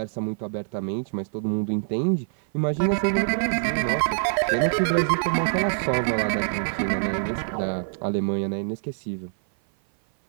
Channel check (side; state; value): left; silent; 56 dB below the other